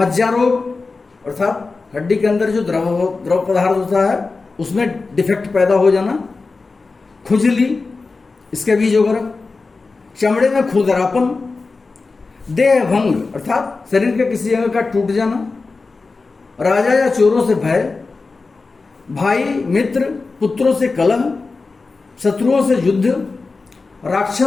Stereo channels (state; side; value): quieter; right; 4.0 dB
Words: रोग अर्थात हड्डी के अंदर जो द्रव पदार्थ होता है उसमें डिफेक्ट पैदा हो जाना, खुजली, इसके बीज वगैरह, चमड़े में खुरदरापन, देह भंग अर्थात शरीर के किसी अंग का टूट जाना, राजा या चोरों से भय, भाई मित्र पुत्रों से कलह, शत्रुओं से युद्ध,